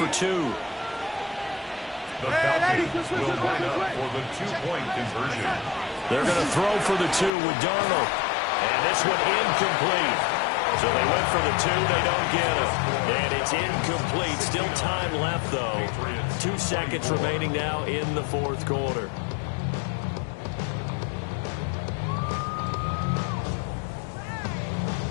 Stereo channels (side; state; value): right; drops out; at 7.3 s